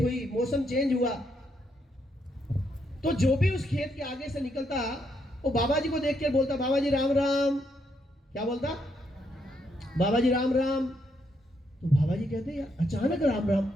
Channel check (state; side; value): normal; both; correlation 0.77